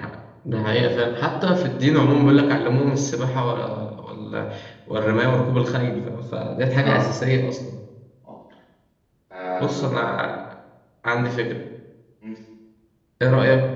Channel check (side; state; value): both; identical; correlation 1.00